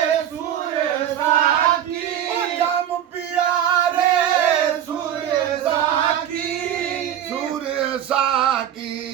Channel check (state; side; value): quieter; left; 10.4 dB